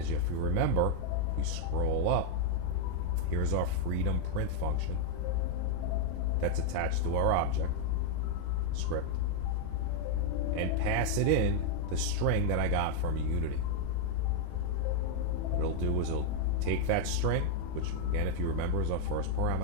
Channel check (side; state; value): both; different; correlation 0.00